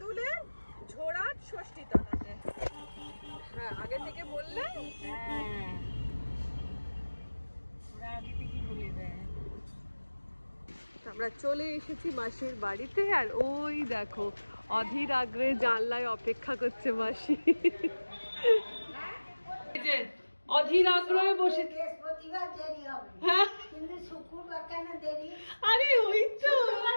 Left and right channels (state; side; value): inverted; both; correlation -1.00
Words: ঝোড়াট ষষ্ঠী তলাতে। হ্যাঁ আগে থেকে বললে আমরা চলে এসেছি মাসির বাড়িতে। আর ওই দেখো অধীর আগ্রহে জানলায় অপেক্ষা করছে মাসি। অধীর আগ্রহে বসে। বৃহস্পতিবার দেরি হবে, হ্যাঁ কিন্তু শুক্রবার কেন দেরি? আরে ওই তো